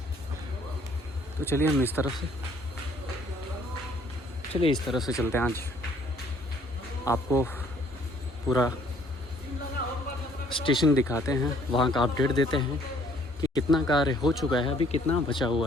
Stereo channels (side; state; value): both; normal; correlation 0.61